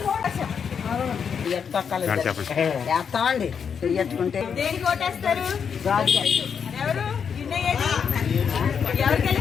వేస్తామండి చెయ్యట్టుకుంటే దేనికి ఓటేస్తారు? ఎవరు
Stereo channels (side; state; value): right; quieter; 6.9 dB